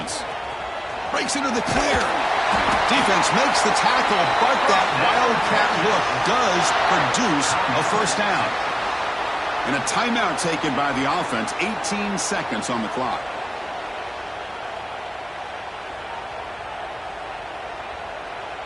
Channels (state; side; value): identical; both; correlation 1.00